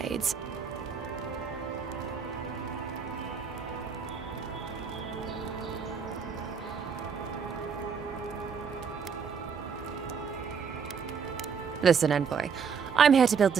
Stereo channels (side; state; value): left; quieter; 6.3 dB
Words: Listen, envoy. I'm here to build